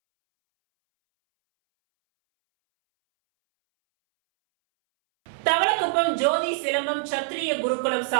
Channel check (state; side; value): silent; left; 63 dB below the other